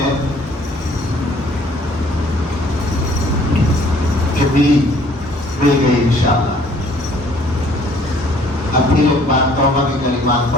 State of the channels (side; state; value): both; normal; correlation 0.58